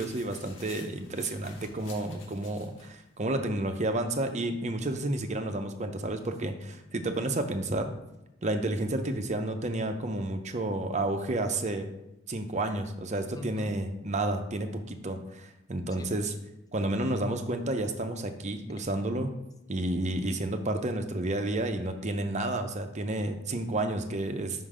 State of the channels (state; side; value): normal; both; correlation 0.48